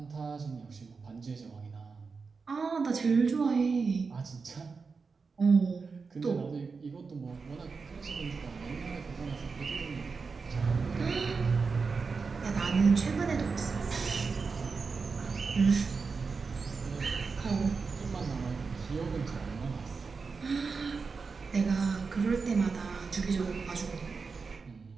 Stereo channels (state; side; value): quieter; left; 4.8 dB